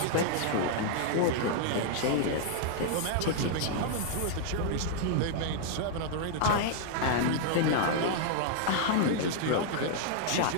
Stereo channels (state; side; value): different; both; correlation -0.01